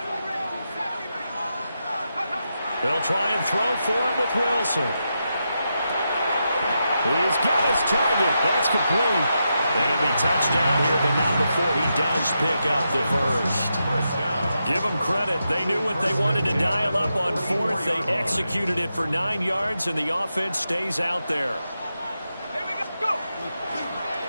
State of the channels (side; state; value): both; inverted; correlation -0.86